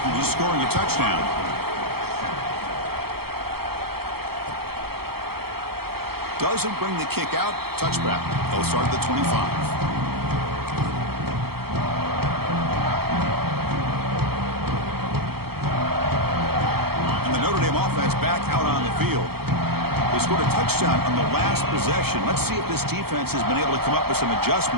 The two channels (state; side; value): late; left; 0.95 ms